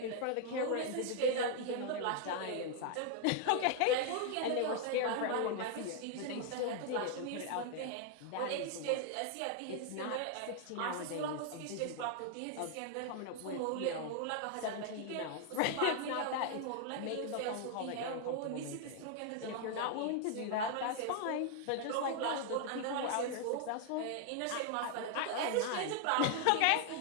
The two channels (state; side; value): different; both; correlation 0.00